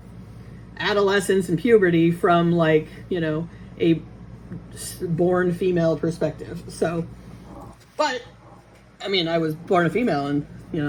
adolescence and puberty from, like, a born female perspective. So, but, I mean, I was born a female and,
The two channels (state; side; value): identical; both; correlation 1.00